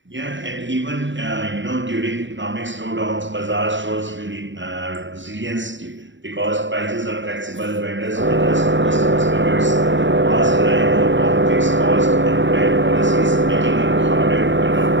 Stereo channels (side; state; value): left; late; 0.54 ms